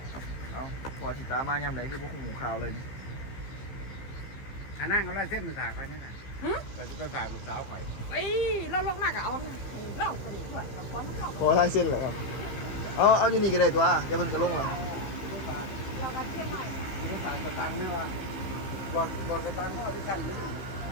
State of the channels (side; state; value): right; late; 15 ms